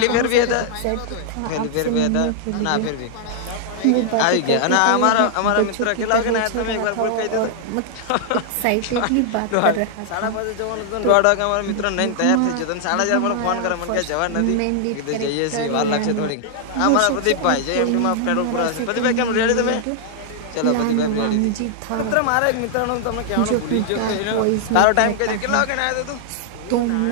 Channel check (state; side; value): different; both; correlation -0.01